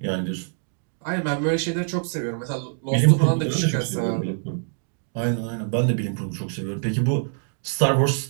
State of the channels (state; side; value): silent; left; digital silence